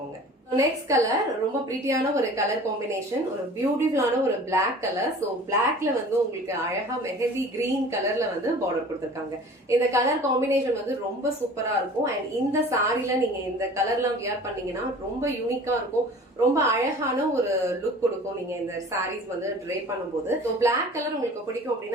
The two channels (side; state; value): both; normal; correlation 0.44